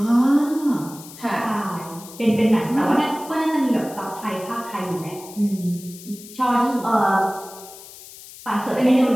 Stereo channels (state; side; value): noise; left; hiss, 17 dB below the sound